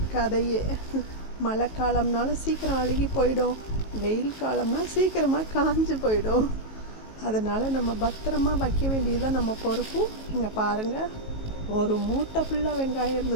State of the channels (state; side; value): late; right; 18 ms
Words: கதையே. மழை காலம்னாலும் சீக்கிரம் அழுகி போயிடும், வெயில் காலம்னா சீக்கிரமாக காஞ்சு போயிடும். அதனால் நம்ம பத்திரமா வைக்க வேண்டியதுதான் நம்ம பொறுப்பு. இங்கே பாருங்கள், ஒரு மூட்டை ஃபுல்லாக வெங்காயம்